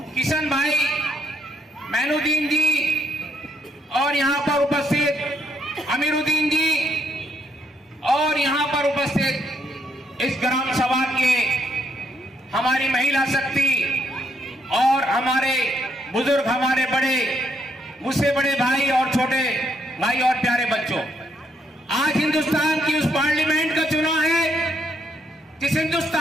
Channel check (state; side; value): normal; both; correlation 0.73